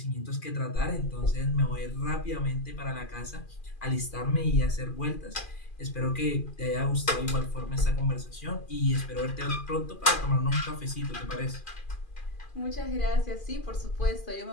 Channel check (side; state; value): right; late; 2.4 ms